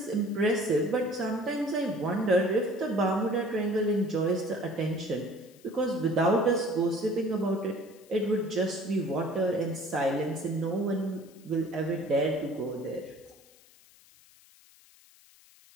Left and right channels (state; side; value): noise; left; hiss, 26 dB below the sound